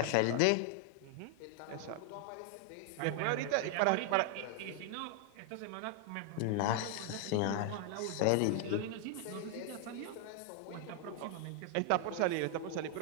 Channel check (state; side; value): different; both; correlation 0.00